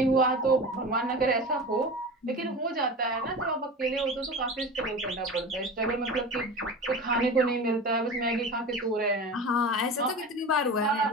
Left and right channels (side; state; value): both; normal; correlation 0.31